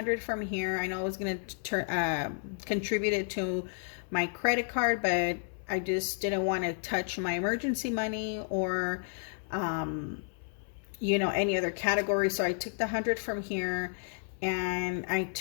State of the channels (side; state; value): right; silent; 57 dB below the other